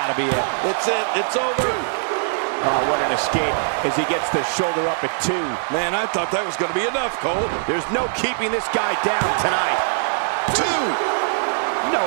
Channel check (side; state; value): left; silent; digital silence